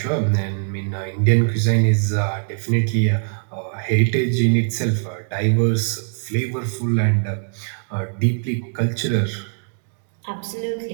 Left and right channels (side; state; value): left; silent; digital silence